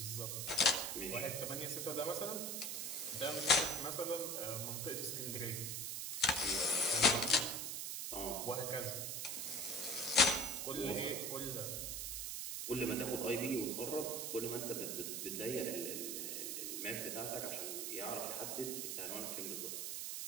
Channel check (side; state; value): right; noise; hiss, 3 dB below the sound